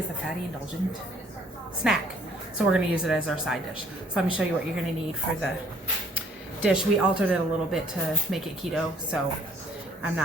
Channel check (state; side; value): normal; both; correlation 0.60